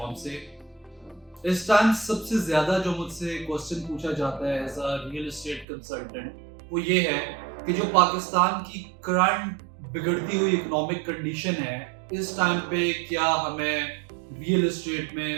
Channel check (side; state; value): left; drops out; at 5.7 s